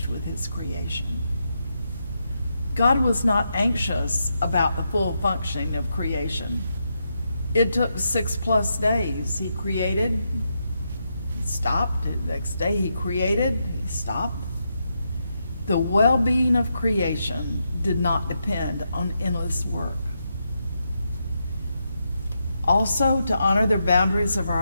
with His creation. God was not anxious about the full functioning of creation. It took 6+ days. He created, He stopped. The next day He created, He stopped. The well-being of creation did not depend on endless work. Also, to honor the boundaries of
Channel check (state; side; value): inverted; both; correlation -0.83